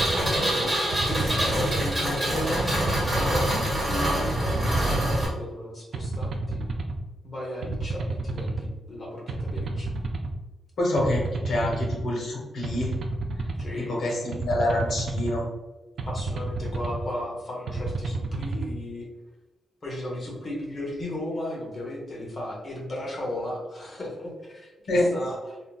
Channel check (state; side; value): normal; both; correlation 0.82